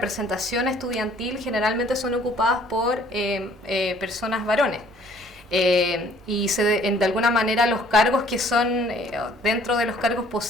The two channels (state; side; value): normal; both; correlation 0.58